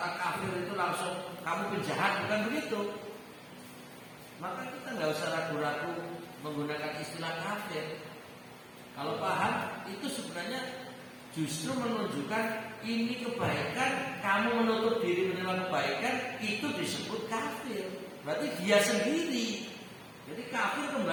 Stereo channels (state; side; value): identical; both; correlation 1.00